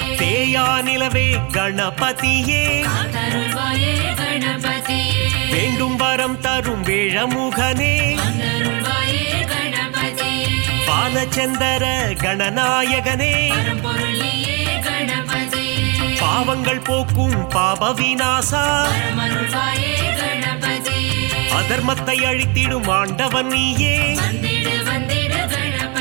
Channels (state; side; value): quieter; left; 31.2 dB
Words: அழியா நிலவே கணபதியே காத்தருள்வாயே கணபதியே வேண்டும் வரம் தரும் வேழமுகனே வந்தருள்வாயே கணபதியே பாலச்சந்தர கணநாயகனே பரம்பொருளியே கணபதியே பாவங்கள் போக்கும் பாப விநாசா பரமருள்வாயே கணபதியே அதர்மத்தை அழித்திடும் ஆண்டவன் நீயே வந்திடு வந்திடு